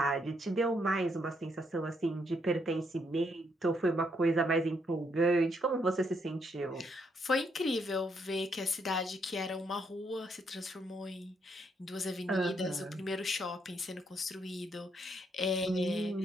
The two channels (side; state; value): both; normal; correlation 0.74